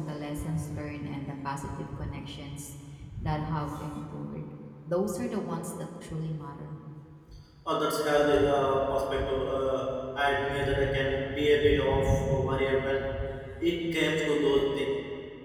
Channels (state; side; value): identical; both; correlation 1.00